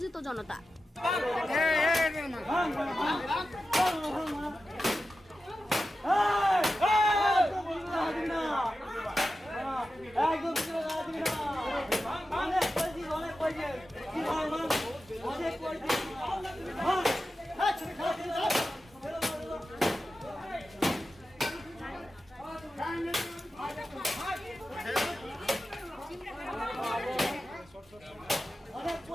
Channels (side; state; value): both; normal; correlation 0.92